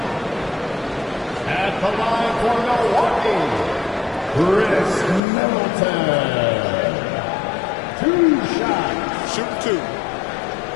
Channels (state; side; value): drops out; right; at 5.2 s